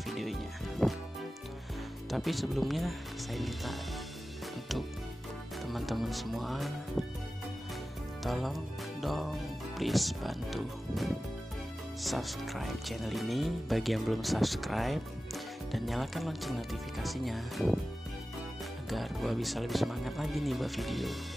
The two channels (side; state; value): both; normal; correlation 0.95